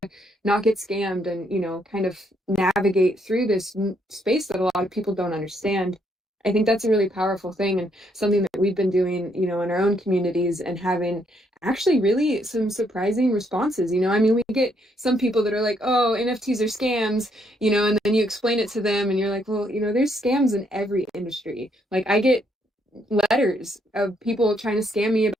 not get scammed, and kind of navigate through this space that a lot of people don't understand. I think that's a really powerful thing and something that we've been doing, in our own communities and having actually really some surprising responses. I mean, we get some people that are like, oh, NFTs are scams, and then you explain it to them and you're like, well, there's scams in every industry. Like I get letters of people trying to scam me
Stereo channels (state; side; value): normal; both; correlation 0.72